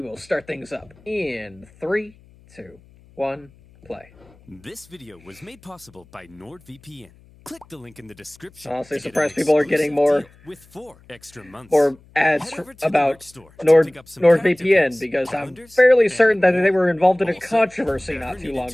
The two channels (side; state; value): left; noise; hum, 27 dB below the sound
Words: start things up in 3, 2, 1, play. This video was made possible by NordVPN. Click the link in the description. Honestly, surprised people are getting more with 4 extra months. Or ads about NordVPN, because I'm fairly certain that they were involved in a controversy not too long